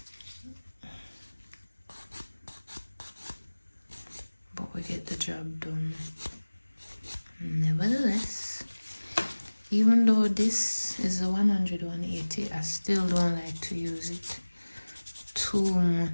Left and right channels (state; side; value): inverted; both; correlation -1.00